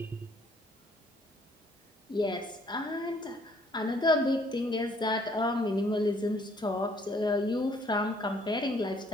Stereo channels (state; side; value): normal; both; correlation 0.62